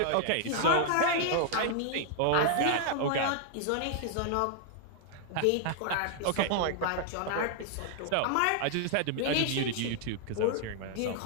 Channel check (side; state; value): both; different; correlation 0.00